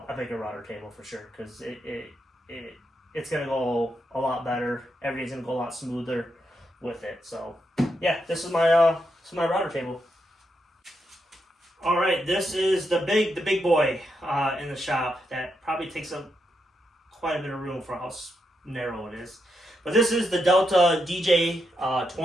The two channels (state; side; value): normal; both; correlation 0.82